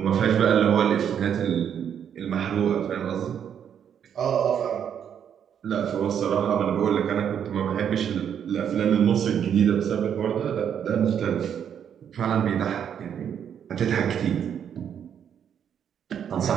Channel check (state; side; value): quieter; left; 8.6 dB